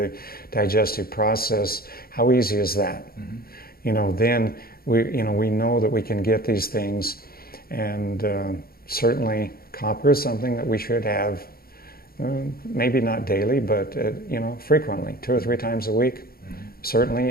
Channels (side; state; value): right; late; 0.44 ms